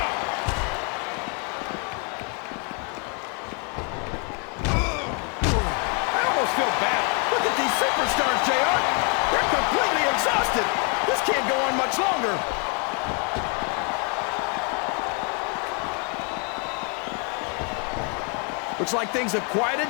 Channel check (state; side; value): quieter; right; 36.6 dB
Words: I almost feel bad. Look at these superstars, JR. They're completely exhausted. This can't go on much longer. Looks like things have quieted